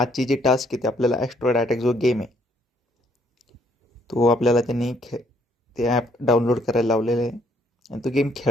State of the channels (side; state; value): both; normal; correlation 0.67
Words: जी टास्क आहे ती आपल्याला ॲस्ट्रॉइड अटॅक जो गेम आहे तो आपल्याला त्यांनी ते ॲप डाउनलोड करायला लावलेलं आहे आणि तो गेम